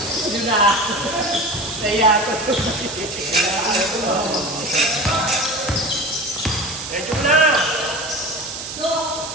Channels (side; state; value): right; noise; hiss, 8 dB below the sound